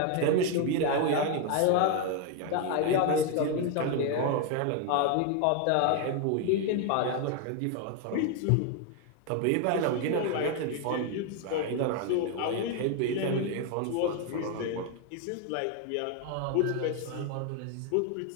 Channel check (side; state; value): both; different; correlation 0.01